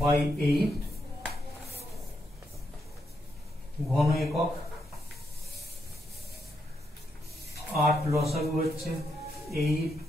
by 8 ঘন একক। 8 লসাগু হচ্ছে 8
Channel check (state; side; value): normal; both; correlation 0.80